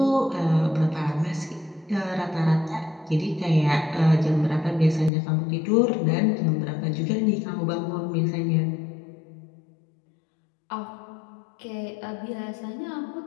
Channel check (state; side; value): drops out; right; at 5.1 s